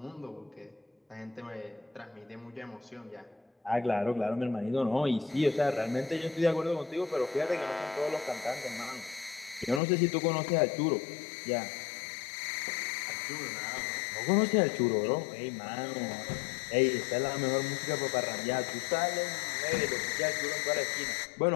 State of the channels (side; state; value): right; drops out; at 9.8 s